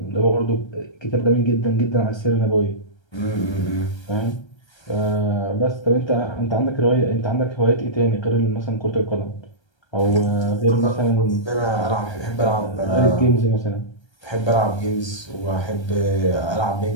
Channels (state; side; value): late; right; 1.3 ms